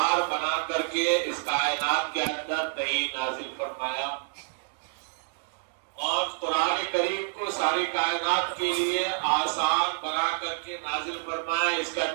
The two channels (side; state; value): left; silent; digital silence